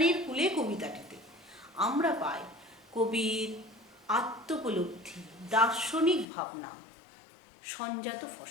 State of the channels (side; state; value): right; drops out; at 6.2 s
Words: কুলে কবিতাটিতে আমরা পাই কবির আত্মোপলব্ধি, দার্শনিক ভাবনা, সঞ্জাত